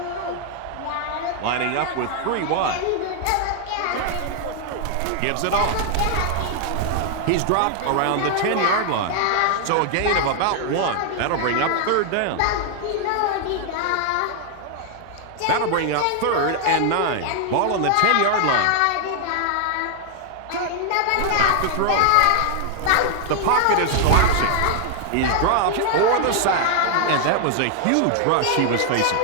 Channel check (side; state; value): both; different; correlation 0.00